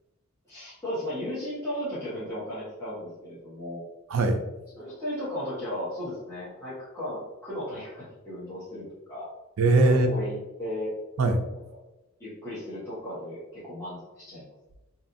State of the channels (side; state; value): both; normal; correlation 0.48